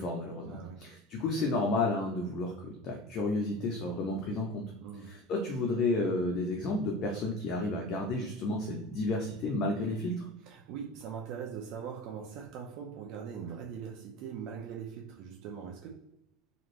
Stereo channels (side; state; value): both; normal; correlation 0.34